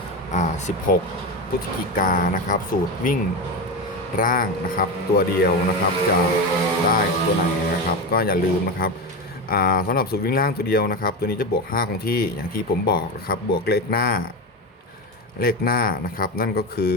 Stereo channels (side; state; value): both; normal; correlation 0.18